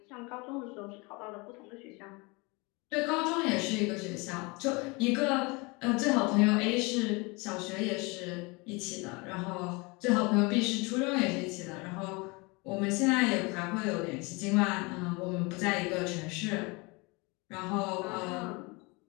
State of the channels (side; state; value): right; quieter; 27.2 dB